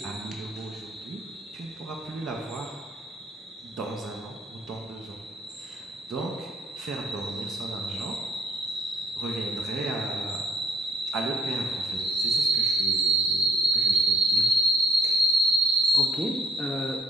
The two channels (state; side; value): normal; both; correlation 0.61